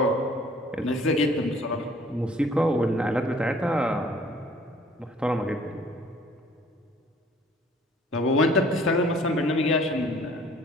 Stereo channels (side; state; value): both; normal; correlation 0.55